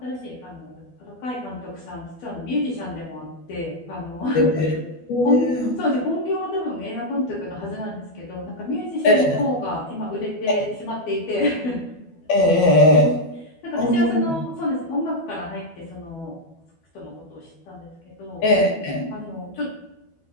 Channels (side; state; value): right; late; 12 ms